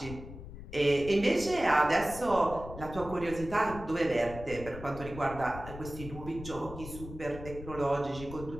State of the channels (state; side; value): noise; left; rumble, 12 dB below the sound